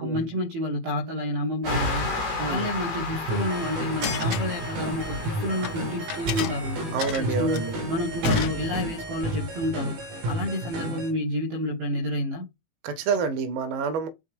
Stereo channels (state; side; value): late; left; 18 ms